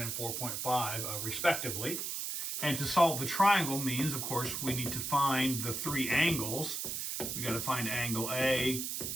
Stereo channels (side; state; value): right; noise; hiss, 3 dB below the sound